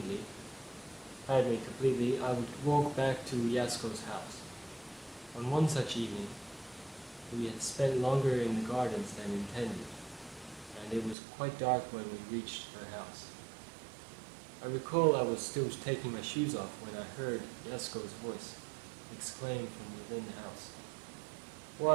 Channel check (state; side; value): drops out; left; at 11.2 s